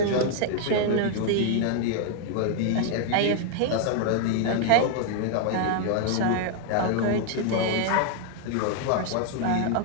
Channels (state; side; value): different; both; correlation 0.00